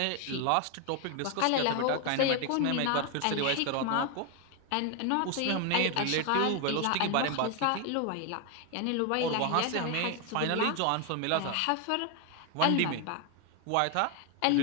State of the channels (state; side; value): different; both; correlation 0.01